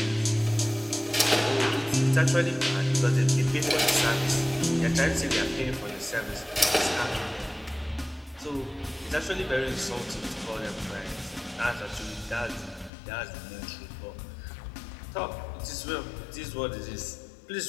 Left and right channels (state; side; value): drops out; right; at 12.9 s